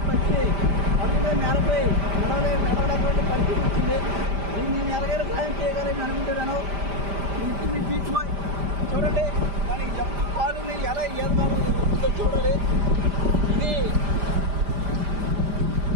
పక్షి అదుగా నేలపై నడవలేకపోతే పరిస్థితి వచ్చింది. దీన్ని నేను ఎలాగైనా సహాయం చేయగలని అనుకుంటున్నాను. మీ బీచ్ బాయ్ చూడండి, దానికి పాలుని ఎలా ఈదగలుగుతుందో చూడాలి. ఇది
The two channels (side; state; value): left; late; 5.0 ms